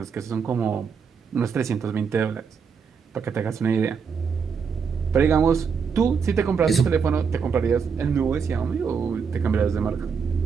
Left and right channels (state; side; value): quieter; left; 6.1 dB